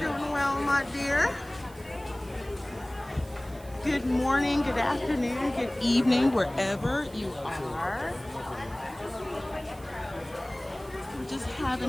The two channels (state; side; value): noise; right; hiss, 23 dB below the sound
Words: well, my dear. Good morning, good afternoon, good evening, wherever you are. We're just